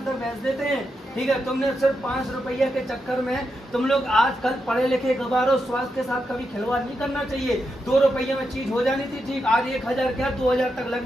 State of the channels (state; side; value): normal; both; correlation 0.85